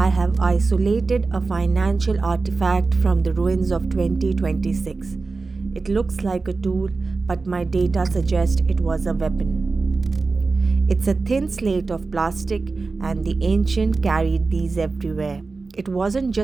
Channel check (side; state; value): left; quieter; 4.0 dB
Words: have isolated a financial artifact from the ruins of 2026. It looks like a tool, but my data suggests it was a weapon. It's a thin slate of plastic, and the ancient carried these everywhere. It wasn't